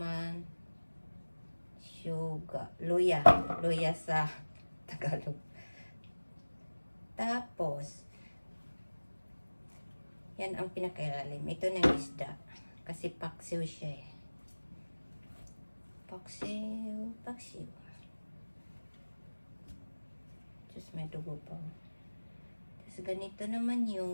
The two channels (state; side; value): inverted; both; correlation -1.00